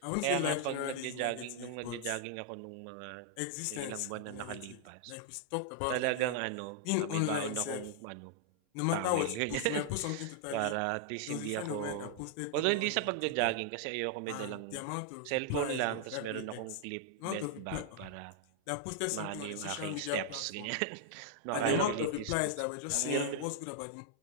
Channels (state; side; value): different; both; correlation -0.01